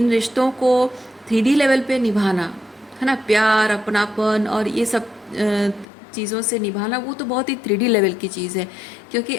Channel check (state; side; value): drops out; right; at 5.9 s